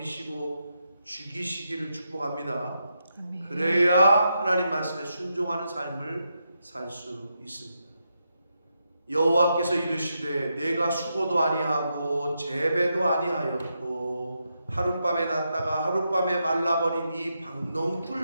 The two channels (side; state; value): both; inverted; correlation -0.84